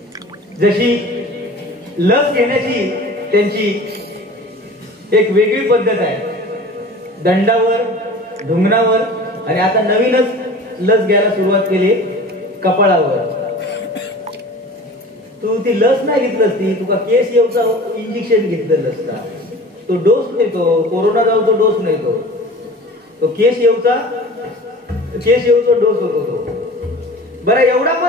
जशी लस घेण्याची त्यांची एक वेगळी पद्धत आहे, दंडावर, ढुंगणावर, आणि आता नवीनच लस घ्यायला सुरुवात केली कपाळावर. तू ती लस नाही घेतलंस, ती तुका केस येऊचा इंजेक्शन घेतलेलं असता. तो डोस नाही, तो कोरोना जाऊचा डोस नाही, तो केस येऊचा डोस होतो तो. बरं एवढा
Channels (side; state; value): both; normal; correlation 0.40